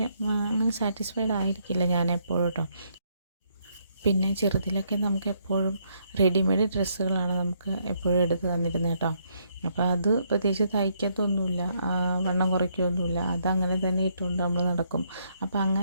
അങ്ങനെ സാറ്റിസ്ഫൈഡ് ആയിരിക്കില്ല ഞാൻ എപ്പോഴും കേട്ടോ. പിന്നെ ചെറുതിലൊക്കെ നമുക്ക് എപ്പോഴും റെഡിമെയ്ഡ് ഡ്രസ്സുകളാണ് നമുക്ക് എപ്പോഴും എടുത്ത് തന്നിരുന്നത് കേട്ടോ. അപ്പോൾ അത് പ്രത്യേകിച്ച് തയ്ക്കത്തൊന്നുമില്ല, വണ്ണം കുറയ്ക്കുകയൊന്നുമില്ല, അതങ്ങനെ തന്നെ ഇട്ടുകൊണ്ട് നമ്മൾ നടക്കും. അപ്പോൾ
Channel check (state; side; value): inverted; both; correlation -0.73